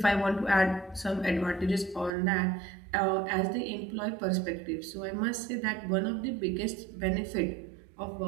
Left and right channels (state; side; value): drops out; left; at 2.1 s